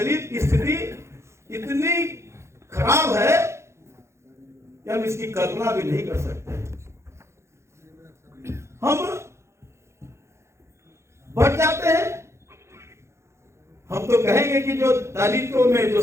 की स्थिति इतनी खराब है कि हम इसकी कल्पना भी नहीं कर सकते। हम बढ़ जाते हैं, हम तो कहेंगे कि जो दलितों में जो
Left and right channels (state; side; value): late; left; 0.13 ms